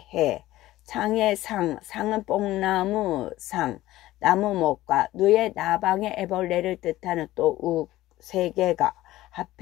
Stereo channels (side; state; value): right; quieter; 16.1 dB